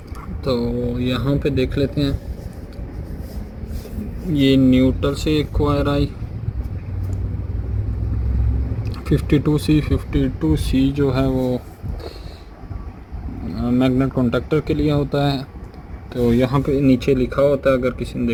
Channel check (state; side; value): identical; both; correlation 1.00